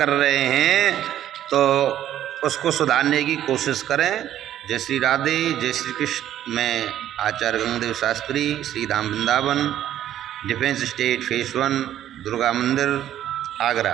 रहे हैं तो उसको सुधारने की कोशिश करें। जय श्री राधे, जय श्री कृष्ण। मैं Acharya Gangadev Shastri, Shri Dham Vrindavan, defence state phase 1, Durga Mandir, Agra.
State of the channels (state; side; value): quieter; left; 11.7 dB